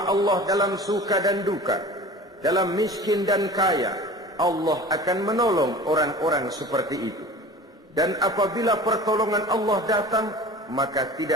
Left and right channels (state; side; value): normal; both; correlation 0.39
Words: Allah dalam suka dan duka, dalam miskin dan kaya. Allah akan menolong orang-orang seperti itu. Dan apabila pertolongan Allah datang, maka